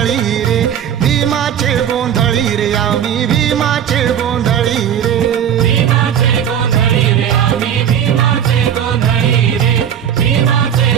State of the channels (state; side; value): quieter; left; 9.1 dB